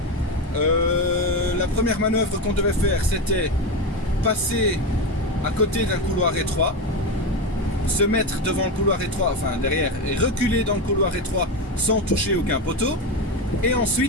La première manœuvre qu'on devait faire, c'était passer à côté d'un couloir étroit, se mettre devant le couloir étroit, enfin derrière, et reculer dans le couloir étroit sans toucher aucun poteau, et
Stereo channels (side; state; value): both; normal; correlation 0.16